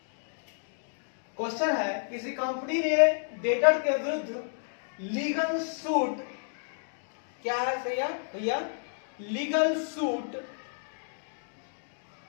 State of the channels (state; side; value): silent; right; digital silence